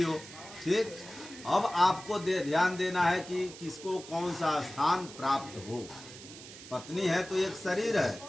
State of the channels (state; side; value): noise; right; hiss, 15 dB below the sound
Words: हो। ठीक, अब आपको ध्यान देना है कि किसको कौन सा स्थान प्राप्त हो। पत्नी है तो एक शरीर है,